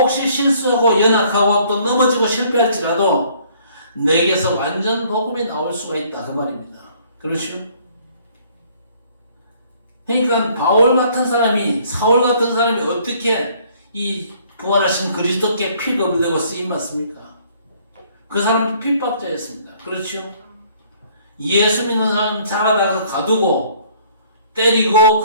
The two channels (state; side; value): inverted; both; correlation -0.60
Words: 실수하고 연약하고 또 넘어지고 실패할지라도 내게서 완전 복음이 나올 수가 있다 그 말입니다. 그렇죠? 그러니까 바울 같은 사람이, 사울 같은 사람이 어떻게 이 부활하신 그리스도께 픽업이 되고 쓰임받습니까? 그 사람은 핍박자였습니다. 그렇죠? 예수 믿는 사람 자라다가 가두고 때리고